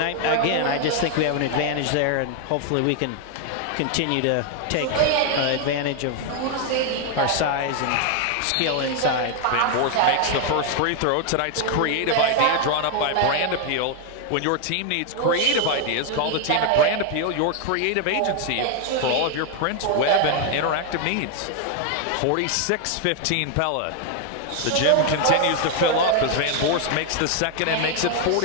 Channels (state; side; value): different; both; correlation 0.01